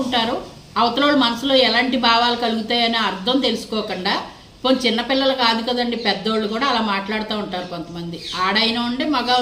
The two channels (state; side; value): identical; both; correlation 1.00